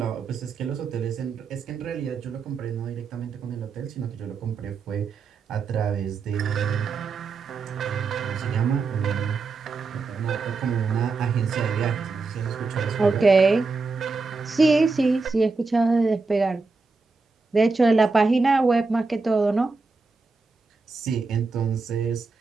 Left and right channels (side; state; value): left; quieter; 4.2 dB